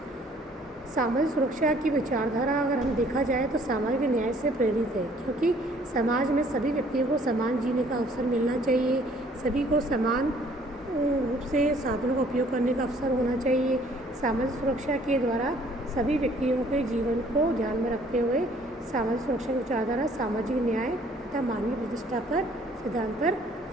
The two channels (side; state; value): both; normal; correlation 0.58